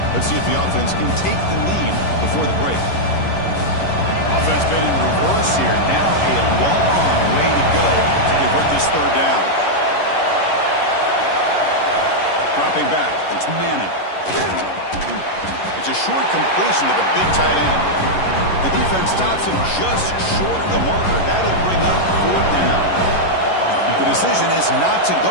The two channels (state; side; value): late; right; 11 ms